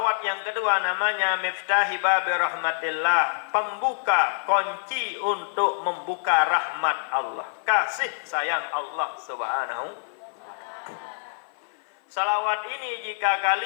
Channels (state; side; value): silent; right; 57 dB below the other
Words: yang kedua namanya Miftahi Babi Rahmatillah, pembuka kunci untuk membuka rahmat Allah, kasih sayang Allah Subhanahu. Salawat ini jika